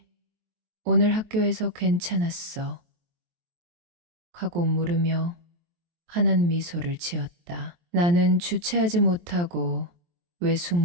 오늘 학교에서 괜찮았어 하고 물으며 환한 미소를 지었다. 나는 주체하지 못하고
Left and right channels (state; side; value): late; left; 23 ms